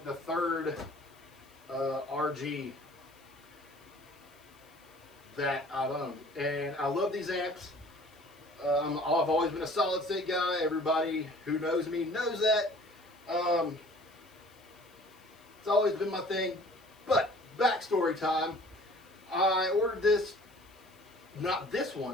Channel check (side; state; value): left; noise; hiss, 29 dB below the sound